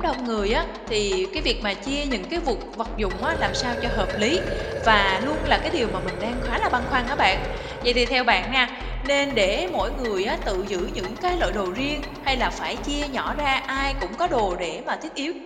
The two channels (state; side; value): identical; both; correlation 1.00